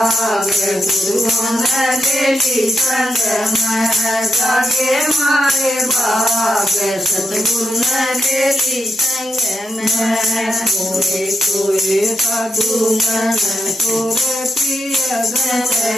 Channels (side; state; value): both; normal; correlation 0.84